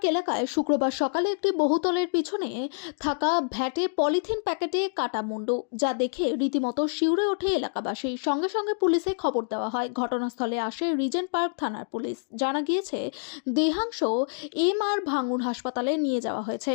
এলাকায় শুক্রবার সকালে একটি বহুতলের পিছনে থাকা ভ্যাটে পলিথিন প্যাকেটে কাটা মুন্ডু, যা দেখে রীতিমতো শিউরে ওঠে এলাকাবাসী। সঙ্গে সঙ্গে পুলিশে খবর দেওয়া হয়। ঘটনাস্থলে আসে রিজেন্ট পার্ক থানার পুলিশ। জানা গিয়েছে, দেহাংশ MR ভাঙুর হাসপাতালে নিয়ে যাওয়া হয়েছে।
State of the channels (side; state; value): right; silent; digital silence